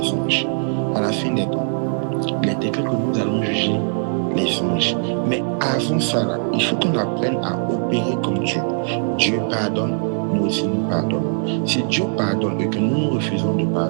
anges. À la fin des temps, il est écrit que nous allons juger les anges. Mais avant ça, là, il faut qu'on apprenne à opérer comme Dieu. Dieu pardonne, nous aussi nous pardonnons. Si Dieu pardonne et que nous refusons de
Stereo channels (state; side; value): silent; left; digital silence